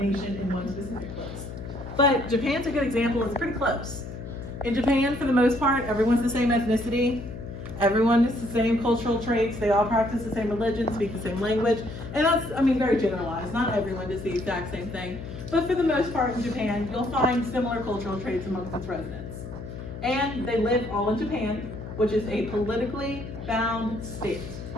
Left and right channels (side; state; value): left; noise; hum, 10 dB below the sound